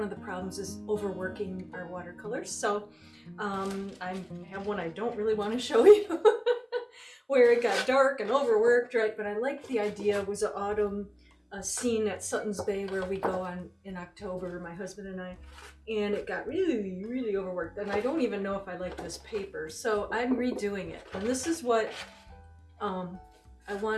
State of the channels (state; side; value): identical; both; correlation 1.00